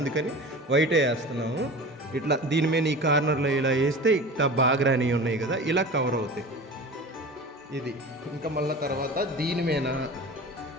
వైటే వేస్తున్నాము. ఇట్లా దీని మీద ఈ కార్నర్లో ఇలా వేస్తే ఇట్లా బాగా రాని ఉన్నాయి కదా, ఇలా కవర్ అవుతాయి. ఇది ఇంకా మళ్ళీ తర్వాత దీని మీద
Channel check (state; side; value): normal; both; correlation 0.35